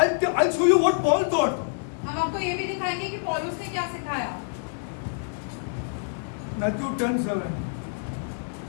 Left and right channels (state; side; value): silent; right; digital silence